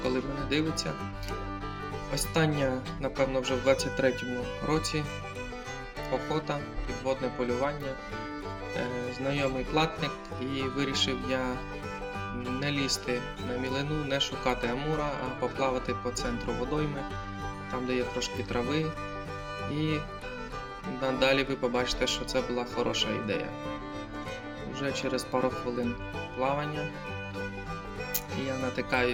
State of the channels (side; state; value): both; identical; correlation 1.00